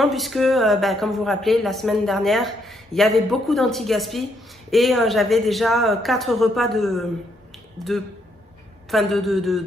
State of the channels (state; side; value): normal; both; correlation 0.74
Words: puisque, comme vous vous rappelez, la semaine dernière, il y avait beaucoup d'anti-gaspi et j'avais déjà 4 repas de